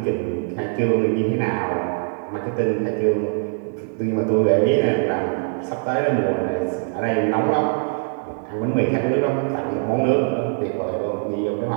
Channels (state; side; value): silent; left; digital silence